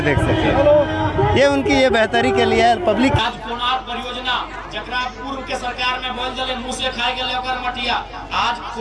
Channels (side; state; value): both; identical; correlation 1.00